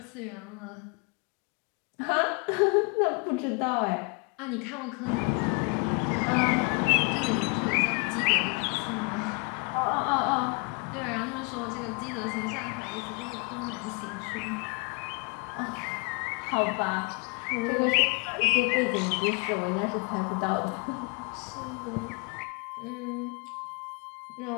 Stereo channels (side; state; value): right; quieter; 34.7 dB